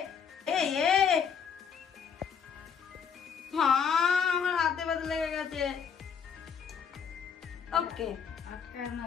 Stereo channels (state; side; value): quieter; right; 6.9 dB